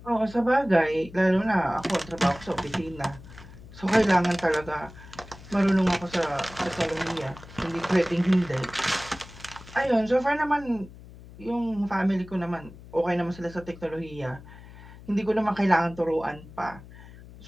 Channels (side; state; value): left; noise; hum, 18 dB below the sound